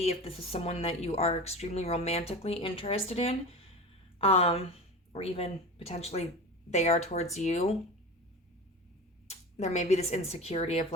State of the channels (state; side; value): normal; both; correlation 0.30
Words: if this is someone that you are extremely romantically interested in, or even potentially they are towards you, there may be this insecurity of